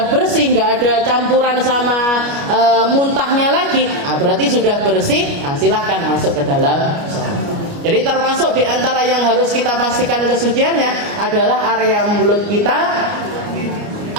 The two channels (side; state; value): left; late; 29 ms